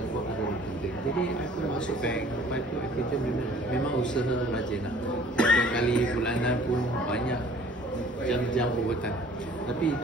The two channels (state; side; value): normal; both; correlation 0.52